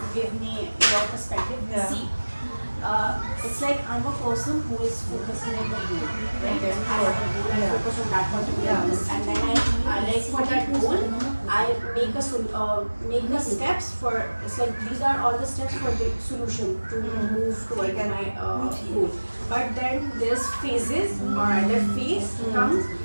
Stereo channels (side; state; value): both; inverted; correlation -1.00